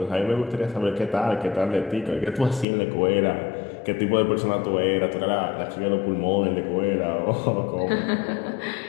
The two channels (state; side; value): drops out; right; at 2.7 s